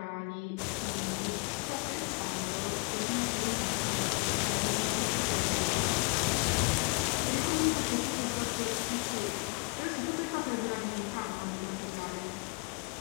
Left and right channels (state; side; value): quieter; right; 33.5 dB